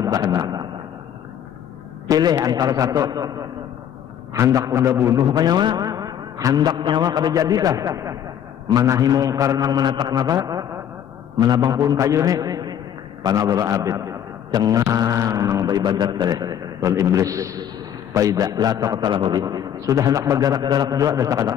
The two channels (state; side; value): quieter; right; 9.6 dB